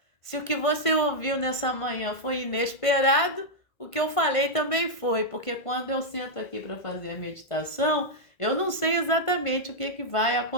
se o que você ouviu nessa manhã foi inesperado, o que eu falei também foi, porque quando eu sento aqui para fazer a meditação, eu não sei exatamente o que vai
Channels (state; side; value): late; right; 1.5 ms